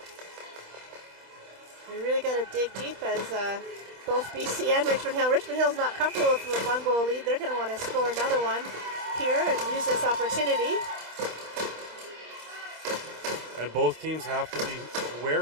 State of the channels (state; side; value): late; left; 26 ms